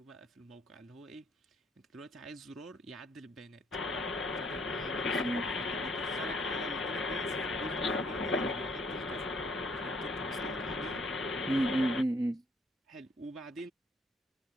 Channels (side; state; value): both; normal; correlation 0.65